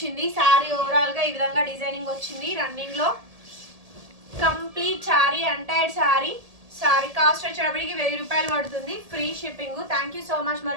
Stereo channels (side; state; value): left; late; 1.7 ms